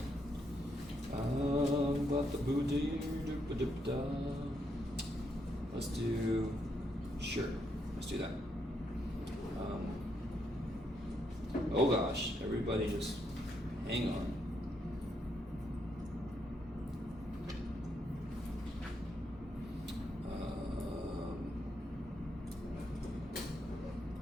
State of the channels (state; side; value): normal; both; correlation 0.77